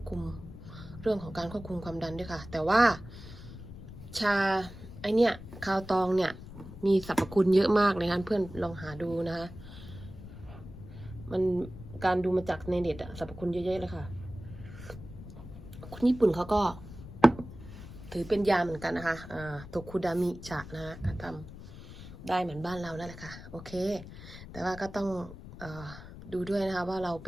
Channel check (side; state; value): left; noise; rumble, 14 dB below the sound